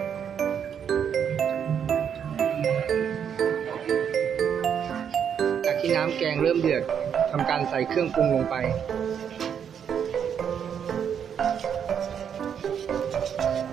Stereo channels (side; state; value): left; quieter; 8.0 dB